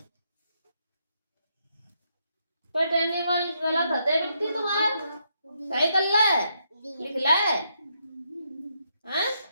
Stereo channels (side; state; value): both; inverted; correlation -0.78